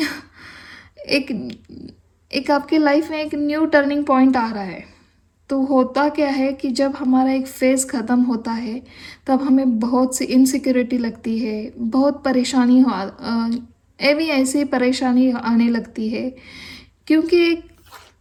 एक एक आपके लाइफ में एक न्यू टर्निंग पॉइंट आ रहा है। तो होता क्या है कि जब हमारा एक फ़ेज़ ख़त्म होता है, तब हमें बहुत सी इनसिक्योरिटी लगती है, बहुत परेशानी ऐसी परेशानी आने लगती है, क्योंकि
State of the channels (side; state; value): both; identical; correlation 1.00